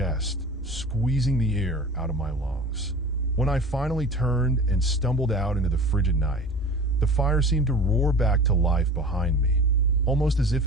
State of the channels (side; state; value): both; normal; correlation 0.38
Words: squeezing the air out of my lungs. When I finally turned and stumbled out into the frigid night, the fire seemed to roar back to life behind me, almost as